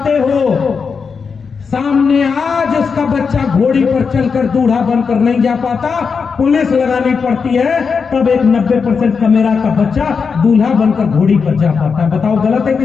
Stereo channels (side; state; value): right; quieter; 5.6 dB